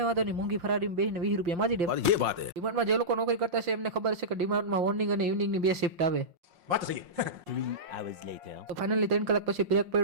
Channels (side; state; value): left; late; 5.6 ms